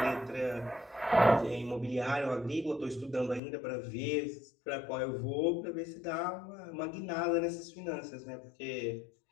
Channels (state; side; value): drops out; right; at 3.4 s